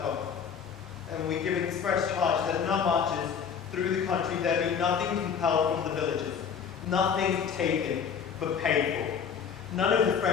off. And we give express charge that in our marches through the country there be nothing compelled from the villages, nothing taken but paid for. None of the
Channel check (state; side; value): quieter; right; 7.0 dB